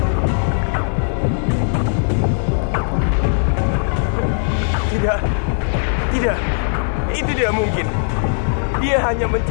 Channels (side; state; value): right; silent; 55 dB below the other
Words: Tidak. Itu tidak mungkin. Dia hanya